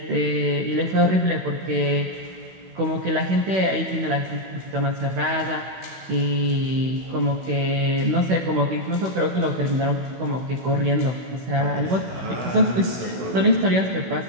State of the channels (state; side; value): late; left; 16 ms